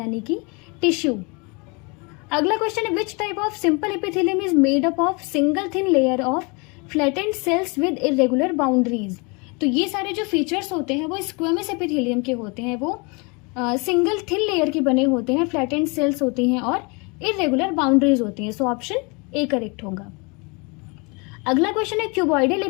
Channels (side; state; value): right; quieter; 30.3 dB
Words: कि टिश्यू। अगला क्वेश्चन है which type of simple epithelium is made up of single thin layer of flattened cells with irregular boundaries. तो ये सारे जो फीचर्स होते हैं वो स्क्वेमस एपिथेलियम के होते हैं, वो सिंगल थिन लेयर के बने होते हैं, फ्लैटेंड सेल्स होती हैं और इरेगुलर बाउंड्रीज होती हैं। सो ऑप्शन ए करेक्ट होगा। अगला क्वेश्चन है cuboidal